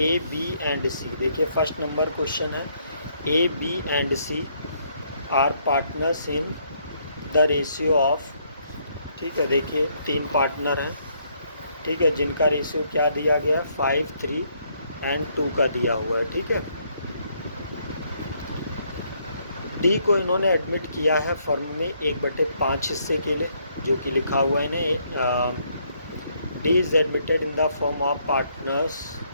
बी एंड सी। देखिए फर्स्ट नंबर क्वेश्चन है, A B and C are partners in the ratio of, ठीक है, देखिए 3 पार्टनर हैं, ठीक है, जिनका रेशियो क्या दिया गया, 5, 3 एंड 2 का दिया हुआ है, ठीक है। डी को इन्होंने एडमिट किया है फर्म में 1/5 हिस्से के लिए, जो कि लिखा हुआ है ना, D is admitted in the form of partners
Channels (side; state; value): both; inverted; correlation -0.71